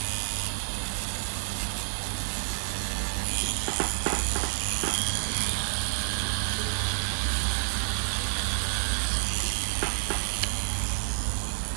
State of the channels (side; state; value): left; silent; 59 dB below the other